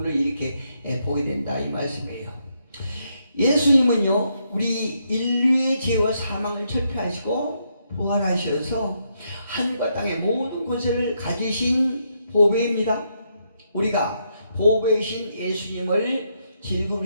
이렇게 보게 된다, 이 말씀이에요. 예수님은요, 우리 인류의 죄와 사망을 철폐하시고 부활하셔서 하늘과 땅의 모든 권세를 가지신 보배입니다. 우리가 보배이신 예수님을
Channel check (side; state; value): both; inverted; correlation -0.78